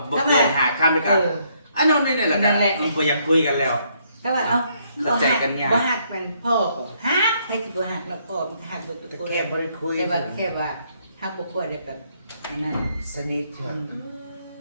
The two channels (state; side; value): inverted; both; correlation -0.71